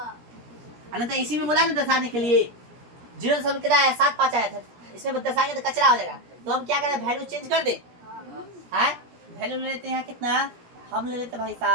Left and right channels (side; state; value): left; late; 17 ms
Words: अनंत इसी में बोला ना दर्शाने के लिए, 0 सब कितना है 7 5 आया था, इसमें दर्शाएंगे तो कचरा हो जाएगा, तो हम क्या करें वैल्यू चेंज कर दे, है वैल्यू ले लेते हैं कितना, हम ले लेते भाई